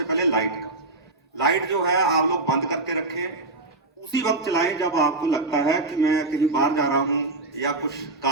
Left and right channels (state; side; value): quieter; left; 3.0 dB